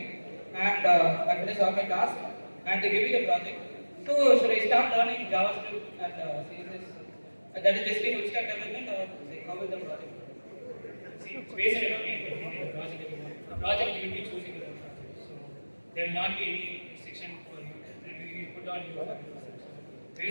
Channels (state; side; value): inverted; both; correlation -1.00